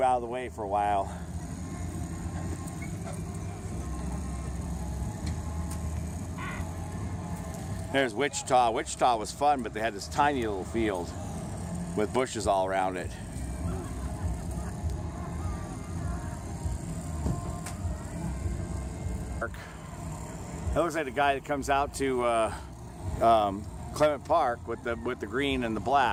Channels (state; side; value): identical; both; correlation 1.00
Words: out of the way for a while. There's Wichita. Wichita was fun, but they had this tiny little field with bushes all around it. It looks like the guy that comes out to Clement Park with the green and the